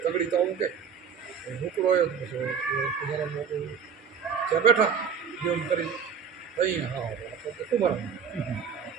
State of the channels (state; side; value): quieter; left; 6.8 dB